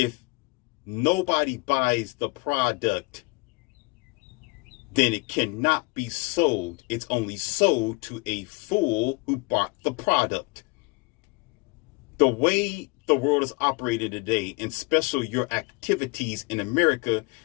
nobody buys the product, then it cannot be sold. It's only sold to a fool who bought the product. The way the world is operating today, and especially your activities in America,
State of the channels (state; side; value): quieter; right; 25.7 dB